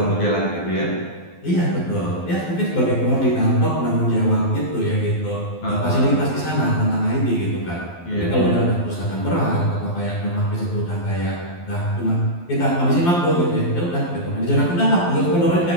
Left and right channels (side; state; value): right; late; 12 ms